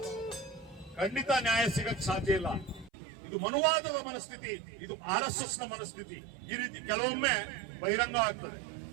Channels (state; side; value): drops out; left; at 2.9 s